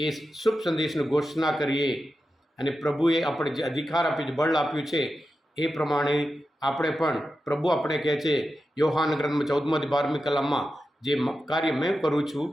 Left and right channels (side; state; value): both; normal; correlation 0.91